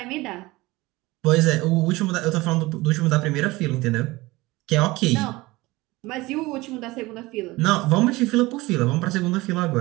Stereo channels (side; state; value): left; quieter; 20.7 dB